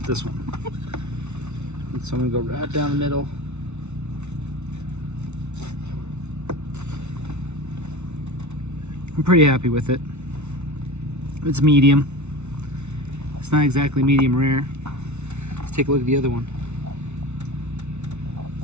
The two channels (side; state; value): left; late; 0.82 ms